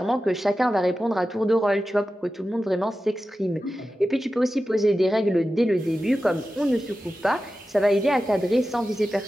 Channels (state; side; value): normal; both; correlation 0.93